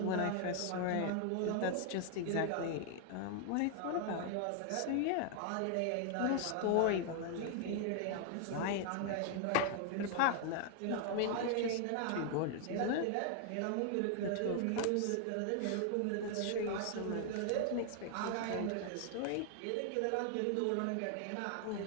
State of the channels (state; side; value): different; both; correlation 0.00